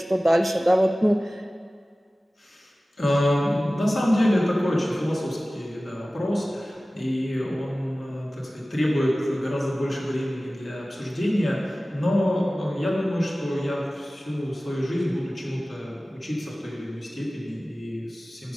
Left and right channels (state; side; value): normal; both; correlation 0.97